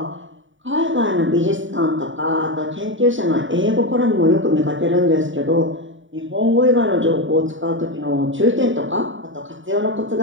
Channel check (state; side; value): late; left; 0.56 ms